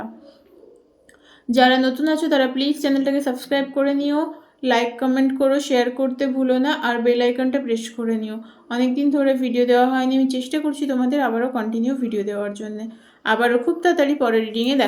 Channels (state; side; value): identical; both; correlation 1.00